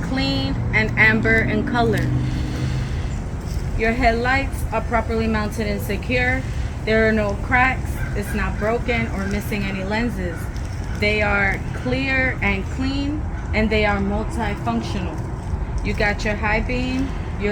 clean and amber in color. Your headlights are properly mounted and secure. There are no cracks. It's not broken or missing any lenses. They are clear and clean, and they are multifunctional. You got your high beam,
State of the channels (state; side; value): identical; both; correlation 1.00